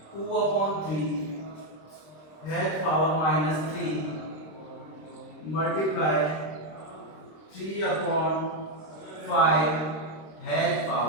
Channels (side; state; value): right; late; 26 ms